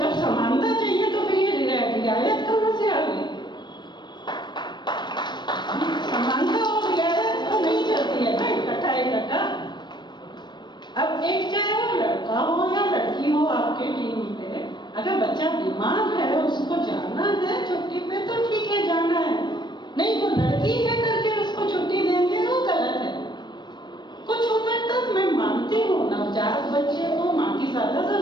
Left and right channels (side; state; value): right; late; 0.22 ms